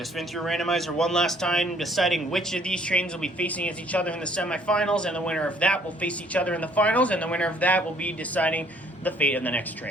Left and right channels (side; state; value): both; normal; correlation 0.61